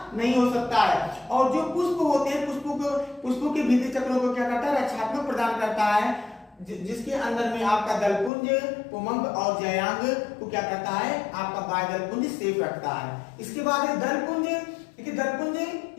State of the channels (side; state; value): right; drops out; at 8.3 s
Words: नहीं हो सकता है। और जो पुष्प होते हैं, पुष्पों के भीतरी चक्रों को क्या करता है, रक्षात्मक प्रदान करता है, जिसके अंदर में आपका दलपुंज, पुमंग और जयांग को क्या करता है, आपका बाह्य दलपुंज सेफ रखता है। इसके बाद दलपुंज, देखिए दलपुंज